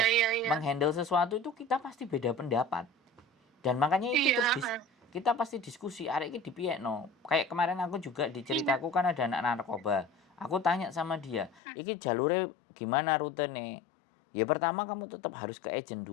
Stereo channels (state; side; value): drops out; right; at 11.6 s